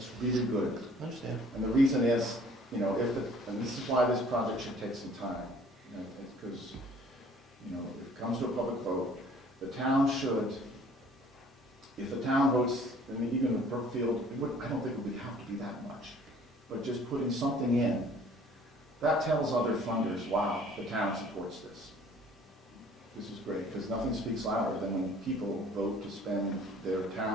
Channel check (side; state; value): both; normal; correlation 0.54